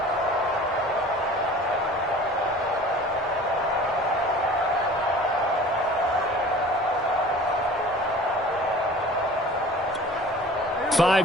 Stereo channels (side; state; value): both; normal; correlation 0.44